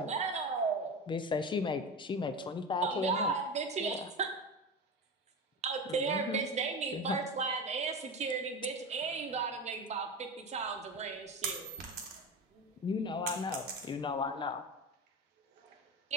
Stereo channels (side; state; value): both; normal; correlation 0.24